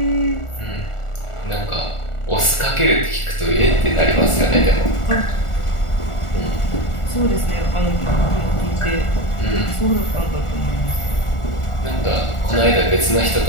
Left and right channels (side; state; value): right; late; 1.4 ms